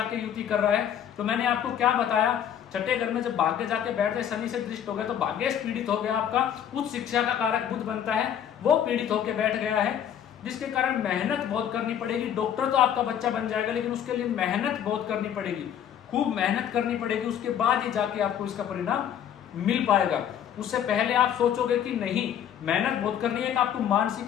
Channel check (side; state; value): right; quieter; 9.5 dB